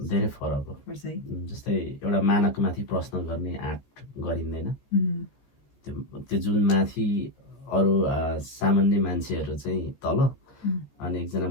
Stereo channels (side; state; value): right; late; 14 ms